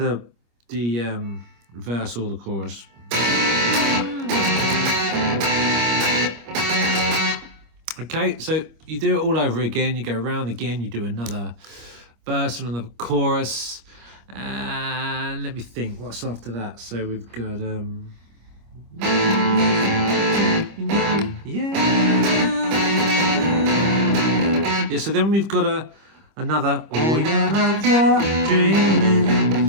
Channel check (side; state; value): left; late; 25 ms